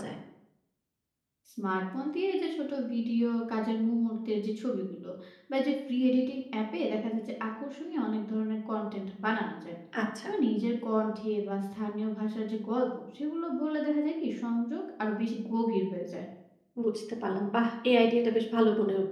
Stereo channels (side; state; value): both; identical; correlation 1.00